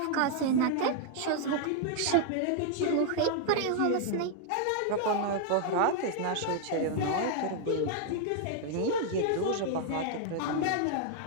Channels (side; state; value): both; different; correlation 0.00